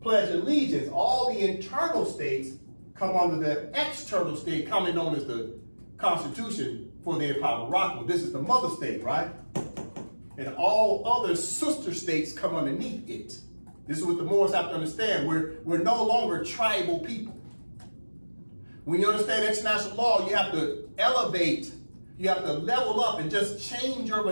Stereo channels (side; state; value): both; inverted; correlation -1.00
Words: pledge allegiance. All the internal states come under the external state, commonly known as the Constitution for the Empire of Morocco. This is the mother state, right? And all other sister states come underneath it. This is what the Moors have to understand. We're no longer tribal people. When you understand international law, you have to elevate, you have to level up and just change your